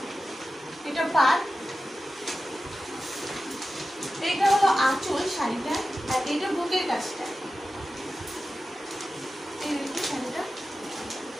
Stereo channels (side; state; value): both; normal; correlation 0.93